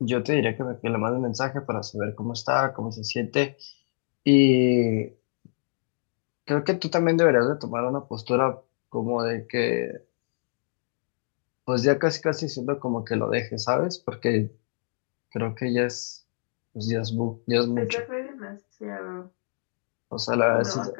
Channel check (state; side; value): silent; right; digital silence